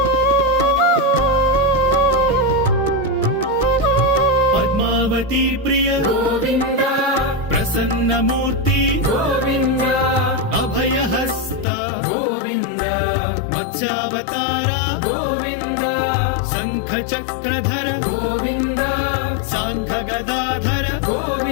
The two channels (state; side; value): drops out; right; at 11.7 s